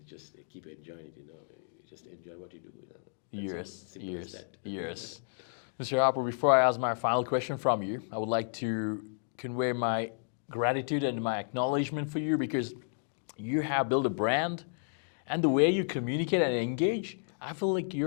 just keep enjoying it, You just enjoy what you do, That's all. Simple as that. Yes. Mr. Harpo, before I ask my final question from you, I would like to convey my gratitude and my acknowledgement for you because you have built a brand and the way you communicate and engage, I feel like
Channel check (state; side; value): silent; right; digital silence